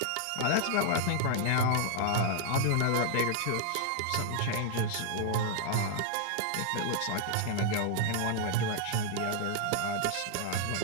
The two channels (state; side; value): different; both; correlation 0.00